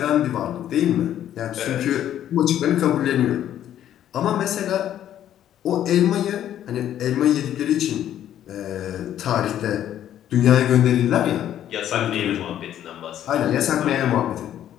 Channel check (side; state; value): right; quieter; 11.1 dB